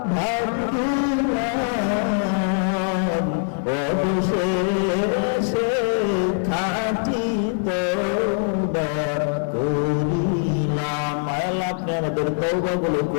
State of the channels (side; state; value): right; silent; 64 dB below the other